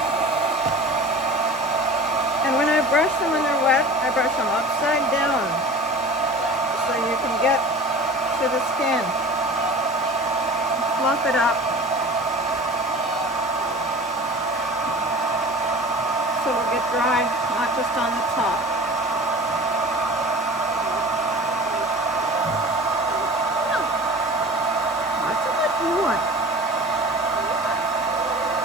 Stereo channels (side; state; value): both; normal; correlation 0.39